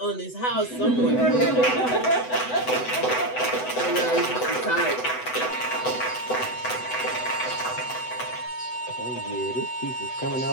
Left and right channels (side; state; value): right; late; 8.0 ms